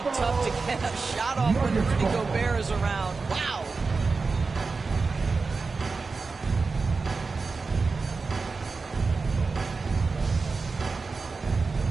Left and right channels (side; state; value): left; quieter; 4.3 dB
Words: tough to get a shot off when Rudy Gobert is around. Wow.